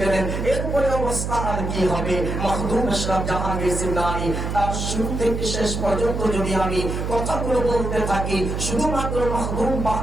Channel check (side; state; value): right; noise; hum, 3 dB below the sound